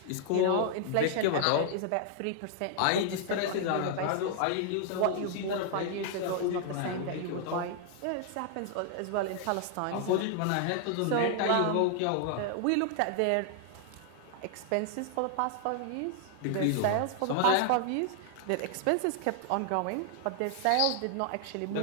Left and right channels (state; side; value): different; both; correlation 0.00